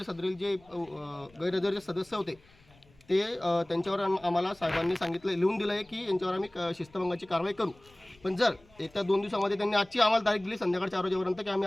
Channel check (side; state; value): left; noise; rumble, 28 dB below the sound